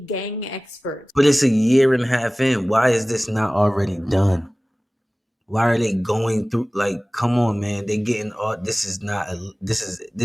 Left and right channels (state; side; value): normal; both; correlation 0.98